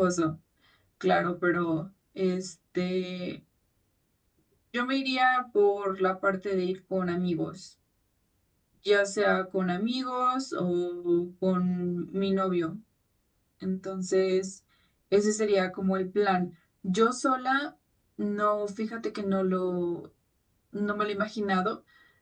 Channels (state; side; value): identical; both; correlation 1.00